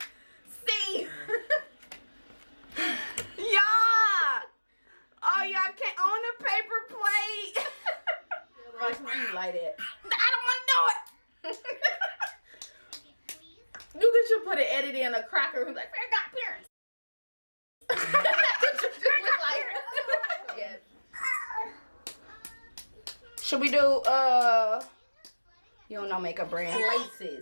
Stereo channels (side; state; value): both; inverted; correlation -1.00